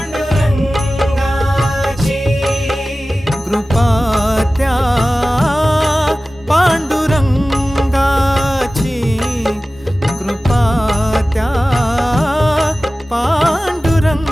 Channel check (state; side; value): normal; both; correlation 0.96